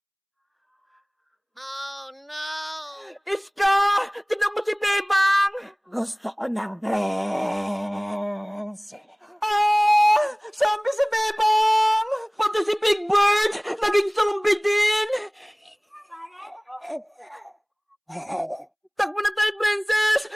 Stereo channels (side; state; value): both; identical; correlation 1.00